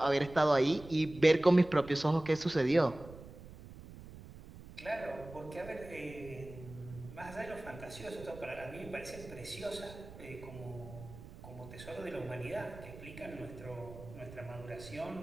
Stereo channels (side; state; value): right; noise; rumble, 16 dB below the sound